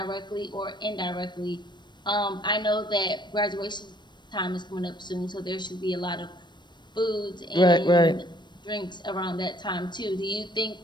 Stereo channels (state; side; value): late; right; 0.22 ms